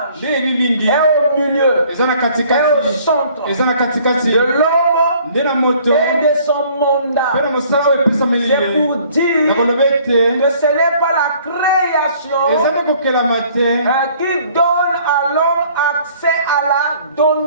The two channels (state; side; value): inverted; both; correlation -0.57